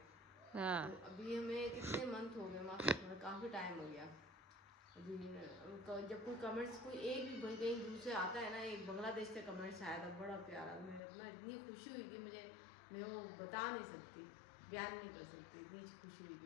हाँ, तो अभी हमें कितने मंथ हो गए, मतलब काफ़ी टाइम हो गया। अभी जब कोई कमेंट्स कोई एक भी भाई कहीं दूर से आता है ना, एक बांग्लादेश से कमेंट्स आया था बड़ा प्यारा, मुझे अपना इतनी खुशी हुई कि मैं वो बता नहीं सकती, बयान नहीं कर सकती, इतनी खुशी हुई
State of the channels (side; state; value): right; drops out; at 11.0 s